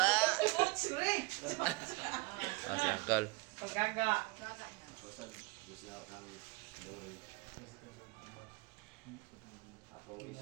Sure. Si Uncle. Paggaga. Ako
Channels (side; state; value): left; quieter; 25.7 dB